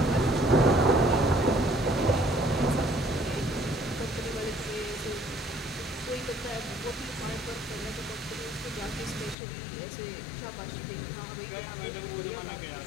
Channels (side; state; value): right; drops out; at 9.3 s